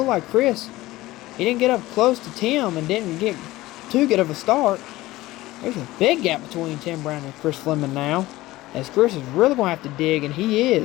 like Chris. He didn't get up close to Tim and didn't get too good of a start. There's a big gap between Tim Brown and Chris Fleming now, as Chris is really going to have to dig, and he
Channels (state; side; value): quieter; right; 17.8 dB